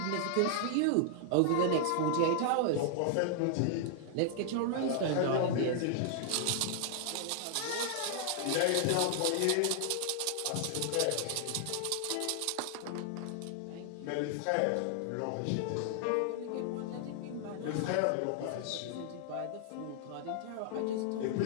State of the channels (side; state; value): both; different; correlation -0.01